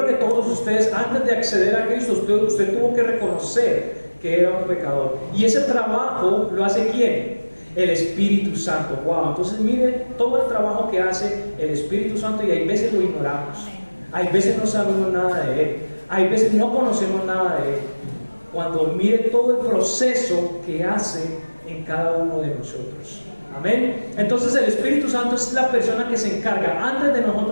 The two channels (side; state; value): both; inverted; correlation -1.00